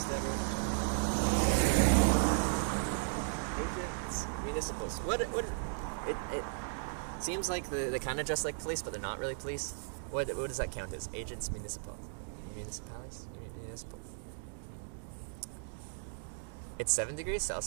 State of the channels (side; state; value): left; silent; digital silence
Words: everyone. Agents, municipals. It seems like they kind of dress like police, but they're not really police. What does that count as? Agents, municipal. Municipales? Municipal. It's 7 degrees